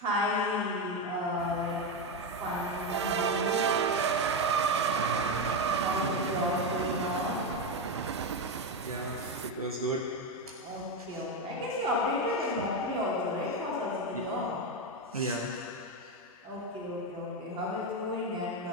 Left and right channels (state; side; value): normal; both; correlation 0.10